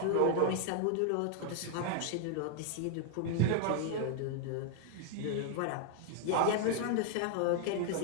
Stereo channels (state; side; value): different; both; correlation 0.00